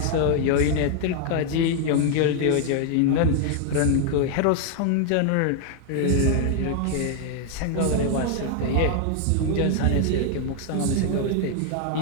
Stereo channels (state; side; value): different; both; correlation 0.00